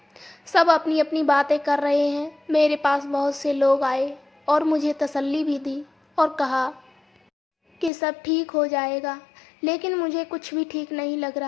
सब अपनी अपनी बातें कर रहे हैं। मेरे पास बहुत से लोग आए और मुझे तसल्ली भी दी और कहा कि सब ठीक हो जाएगा, लेकिन मुझे कुछ भी ठीक नहीं लग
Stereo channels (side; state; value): right; drops out; at 7.9 s